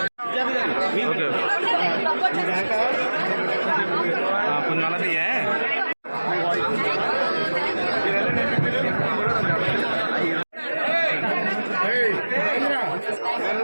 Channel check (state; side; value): inverted; both; correlation -1.00